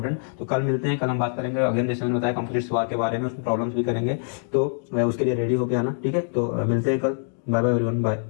तो कल मिलते हैं, कल हम बात करेंगे अगेन जैसे मैंने बताया कंप्लीट सवाल के बारे में, उसमें प्रॉब्लम्स भी करेंगे, तो उसके लिए रेडी होके आना, ठीक है। तो मिलते हैं कल, बाय बाय एवरीवन,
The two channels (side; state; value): right; silent; digital silence